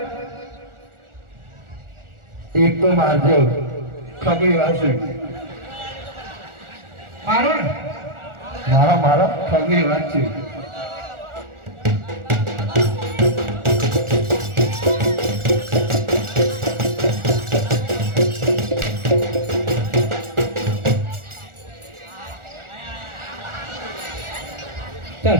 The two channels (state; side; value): late; left; 1.4 ms